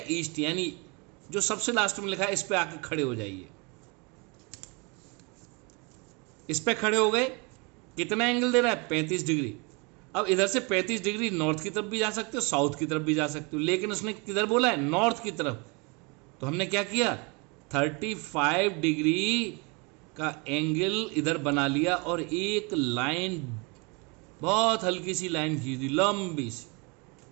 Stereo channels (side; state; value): left; quieter; 30.3 dB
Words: ईस्ट, यानी जो सबसे लास्ट में लिखा है इस पे आके खड़े हो जाइए। इस पे खड़े हो गए, कितना एंगल दे रहा है, 35 डिग्री। अब इधर से 35 डिग्री नॉर्थ की तरफ भी जा सकते हो, साउथ की तरफ भी जा सकते हो, लेकिन उसने किधर बोला है, नॉर्थ की तरफ। तो हमने क्या किया, 35 डिग्री का एंगल इधर बना लिया और एक लाइन, बहुत हल्की सी लाइन खींच दी, लंबी सी।